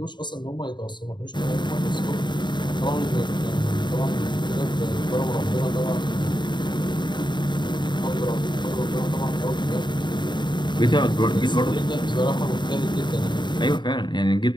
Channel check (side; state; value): right; late; 0.22 ms